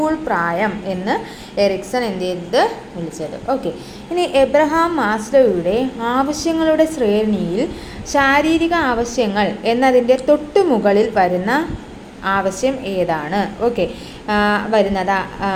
പ്രായം എന്ന് എറിക്സൺ എന്ത് ചെയ്തത് വിളിച്ചത്. ഓക്കെ, ഇനി എബ്രഹാം മാസ്ലോയുടെ ആവശ്യങ്ങളുടെ ശ്രേണിയിൽ ശാരീരിക ആവശ്യങ്ങൾ എന്നതിൻ്റെ തൊട്ടുമുകളിൽ വരുന്ന ആവശ്യം ഏതാണ്? ഓക്കെ, വരുന്നത്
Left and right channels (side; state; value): both; identical; correlation 1.00